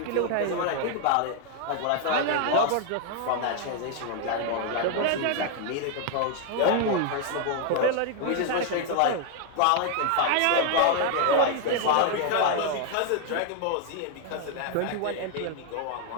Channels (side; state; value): both; different; correlation 0.00